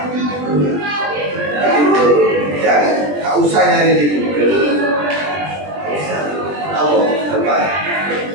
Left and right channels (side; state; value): left; late; 20 ms